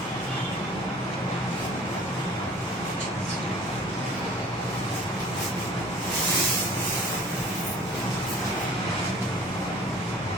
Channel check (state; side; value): normal; both; correlation 0.48